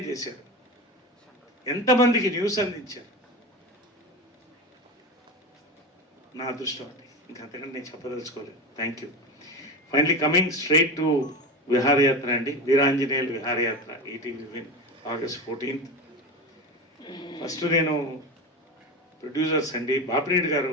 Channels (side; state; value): both; normal; correlation 0.24